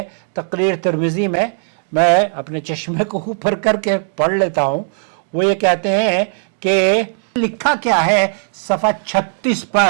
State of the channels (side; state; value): left; silent; digital silence